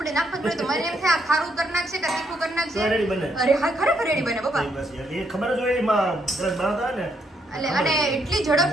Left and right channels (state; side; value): normal; both; correlation 0.74